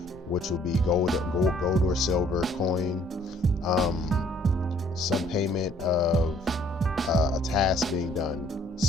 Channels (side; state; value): both; normal; correlation 0.61